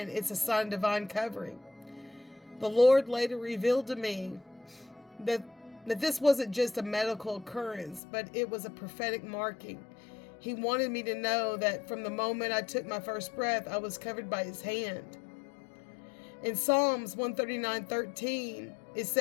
it's a sign of divine covering. The Lord later revealed to me that this wasn't just a medical occurrence, but it was a prophetic marking. He wanted me to know that from the moment I took my first breath, I was covered by his hand. In Psalms 139:13, it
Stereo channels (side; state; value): right; drops out; at 8.0 s